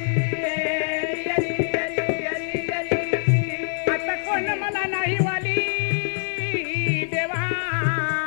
आता कोण मला नाही वाली देवा,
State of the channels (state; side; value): silent; right; 63 dB below the other